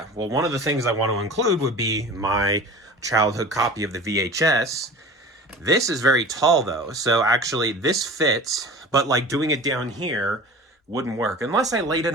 well, one of the things I want to include would be my childhood copy of the VHS. This is very tall though, so actually this fits, but like doing it down here wouldn't work unless I laid it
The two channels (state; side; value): normal; both; correlation 0.38